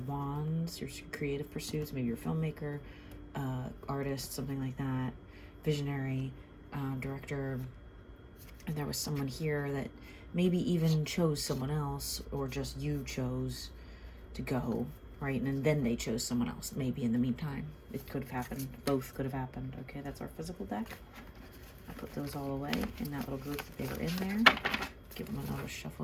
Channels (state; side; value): identical; both; correlation 1.00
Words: wands, your creative pursuits. Maybe you're a filmmaker, artist, something like that, visionary, director, and there was someone here that maybe even chose someone else, or just you chose to go, right? And then they chose someone else, maybe in the meantime. It could have happened. Both could have happened. Okay, that's our physical deck. I put those all away in that little group that they were in there. Give them another